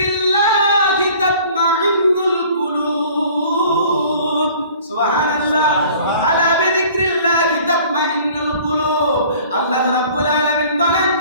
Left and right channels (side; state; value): both; inverted; correlation -0.50